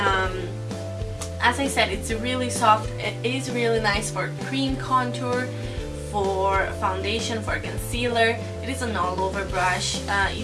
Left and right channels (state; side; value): identical; both; correlation 1.00